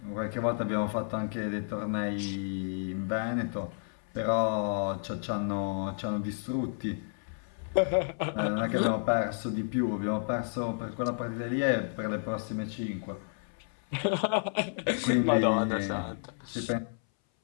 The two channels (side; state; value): right; silent; 57 dB below the other